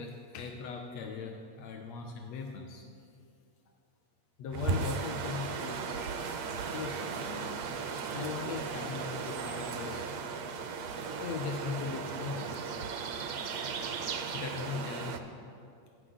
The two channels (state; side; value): late; right; 8.5 ms